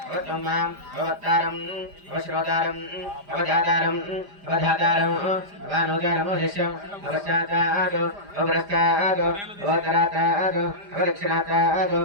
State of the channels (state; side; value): late; left; 5.0 ms